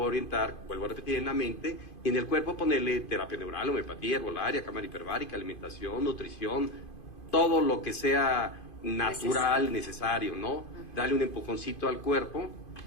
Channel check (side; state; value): right; late; 2.5 ms